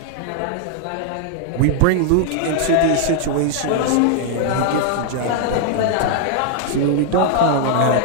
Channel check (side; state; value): both; different; correlation 0.00